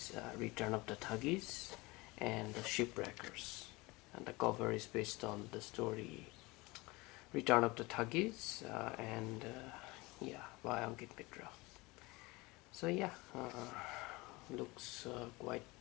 Return of the Thuggees and the Shipwreckers. And the cover is based on the story Return of the Thuggees yeah, by Ankit Mitra. So yeah, looks quite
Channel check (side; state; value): right; quieter; 23.2 dB